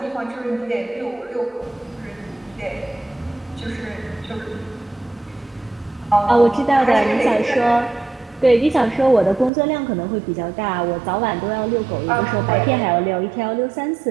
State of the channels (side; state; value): left; drops out; at 9.5 s